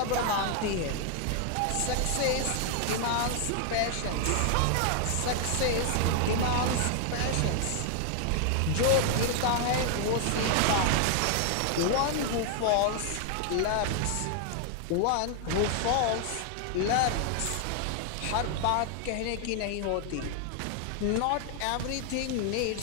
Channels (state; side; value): different; both; correlation 0.00